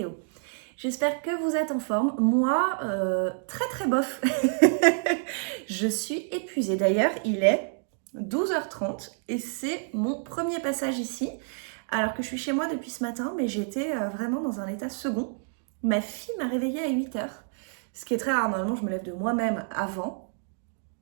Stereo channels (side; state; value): left; silent; 59 dB below the other